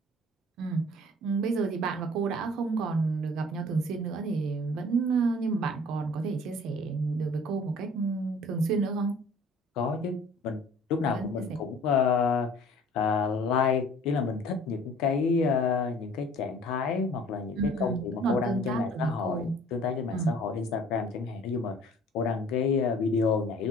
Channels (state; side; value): normal; both; correlation 0.50